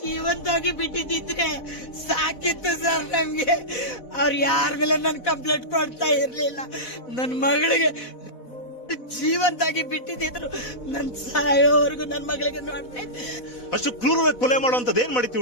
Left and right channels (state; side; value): late; right; 4.1 ms